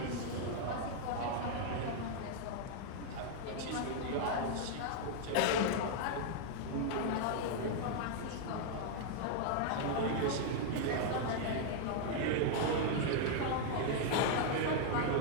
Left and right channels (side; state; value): both; different; correlation 0.00